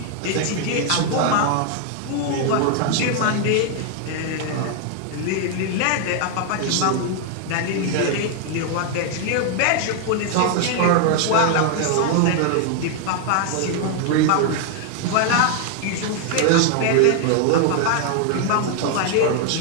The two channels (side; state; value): both; different; correlation 0.00